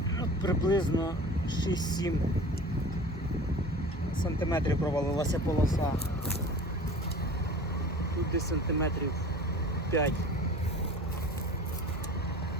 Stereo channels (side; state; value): both; normal; correlation 0.40